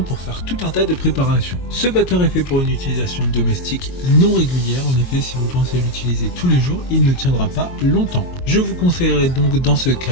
pour faire tout un tas de préparations. Ce batteur est fait pour une utilisation domestique non régulière, en effet si vous pensez l'utiliser tous les jours, il ne tiendra pas longtemps. Je vous conseillerais donc dans ce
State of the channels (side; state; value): right; late; 22 ms